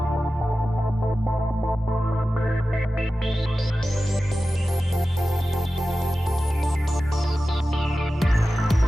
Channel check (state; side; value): normal; both; correlation 0.94